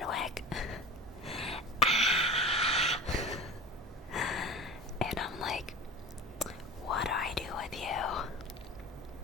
wick. Ah! And I'm like, what do I do with you?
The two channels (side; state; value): both; normal; correlation 0.33